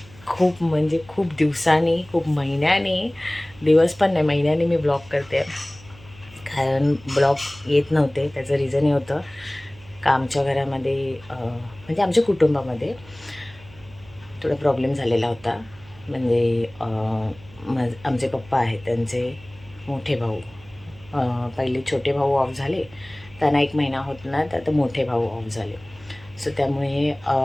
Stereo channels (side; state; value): right; noise; hum, 23 dB below the sound